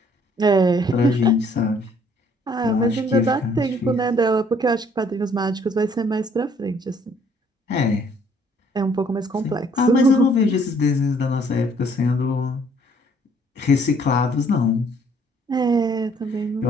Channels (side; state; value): both; normal; correlation 0.62